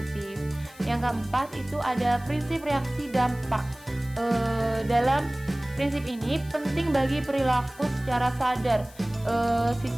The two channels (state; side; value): noise; left; hiss, 22 dB below the sound